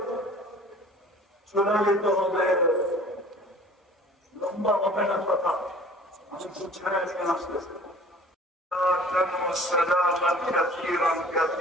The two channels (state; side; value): normal; both; correlation 0.48